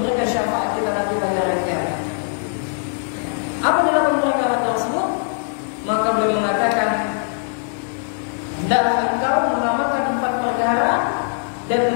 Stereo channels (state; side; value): silent; right; 60 dB below the other